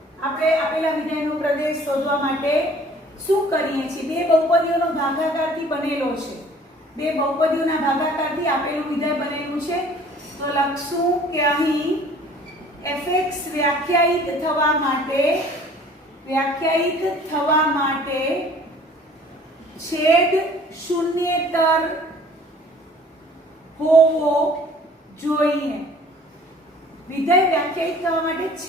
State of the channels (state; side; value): normal; both; correlation 0.52